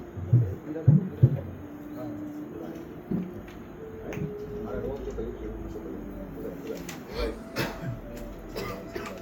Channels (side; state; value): both; identical; correlation 1.00